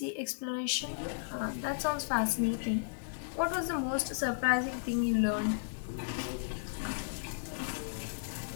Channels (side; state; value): right; silent; digital silence